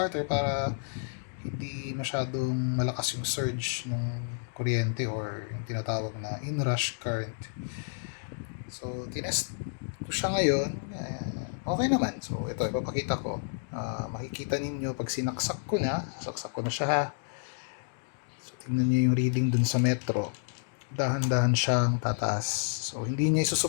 para hindi masyadong malakas yung surge ng kuryente or yung tinatawag na inrush current. So, tinest ko siya ngayon. Okay naman. So, ito, ipapakita ko. Makikita ninyo pag saksak ko na siya ha. So, tingnan nyo yung reading dun sa metro. Dahan-dahan siyang tataas. So, hindi niya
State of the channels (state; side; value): silent; right; digital silence